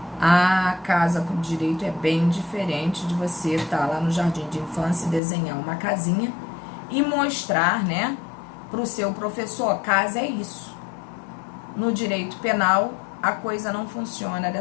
A casa por direito é bem diferente de você estar lá no jardim de infância e desenhar uma casinha e mostrar, né, para o seu professor, casa é isso. No direito penal, a coisa não funciona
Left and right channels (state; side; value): drops out; right; at 5.2 s